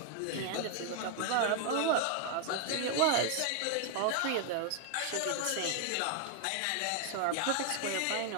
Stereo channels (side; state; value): both; different; correlation 0.00